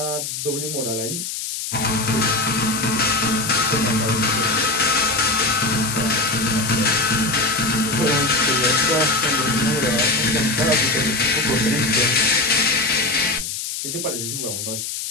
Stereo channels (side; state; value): left; noise; hiss, 5 dB below the sound